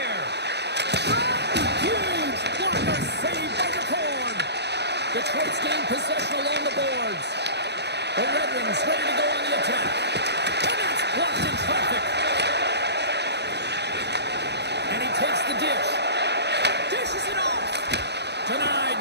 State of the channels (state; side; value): late; left; 0.49 ms